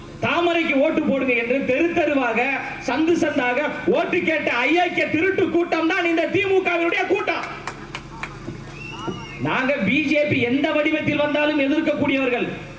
தாமரைக்கு ஓட்டு போடுங்க என்று தெரு தெருவாக சந்து சந்தாக ஓட்டு கேட்ட அயோக்கிய திருட்டு கூட்டம் தான் இந்த திமுகவினுடைய கூட்டம். நாங்க பிஜேபி எந்த வடிவத்தில் வந்தாலும் எதிர்க்கக்கூடியவர்கள்.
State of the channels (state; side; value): identical; both; correlation 1.00